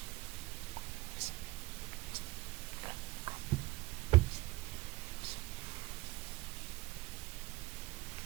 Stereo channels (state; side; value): quieter; left; 20.0 dB